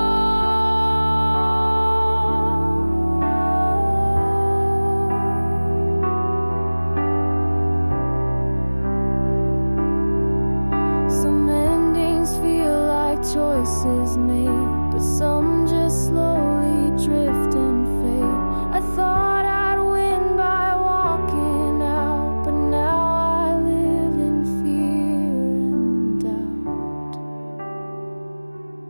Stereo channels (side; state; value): both; inverted; correlation -1.00